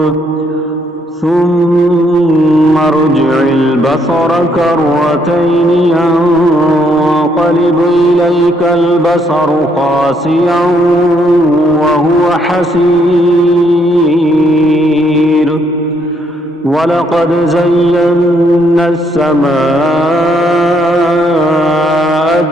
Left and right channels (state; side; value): normal; both; correlation 0.72